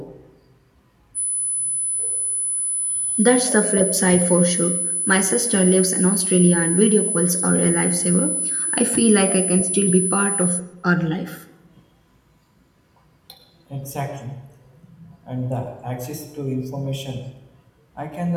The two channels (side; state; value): both; identical; correlation 1.00